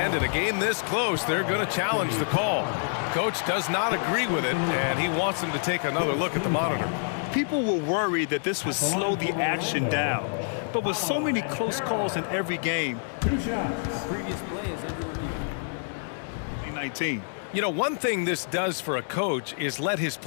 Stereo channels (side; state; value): right; silent; digital silence